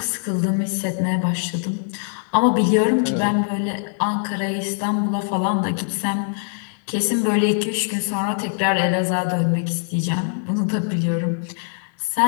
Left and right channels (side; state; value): right; silent; digital silence